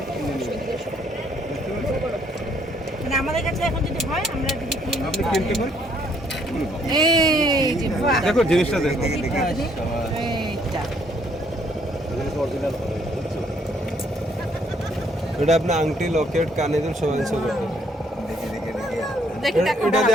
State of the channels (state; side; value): normal; both; correlation 0.66